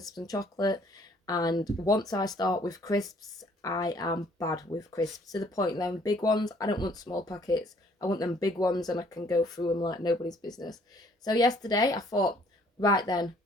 and chocolate. And once I start with crisps, I am bad with crisps. To the point them big ones, I don't want small packets. I want them big ones and I can go through them like nobody's business. So yesterday I thought, right then,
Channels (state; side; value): normal; both; correlation 0.61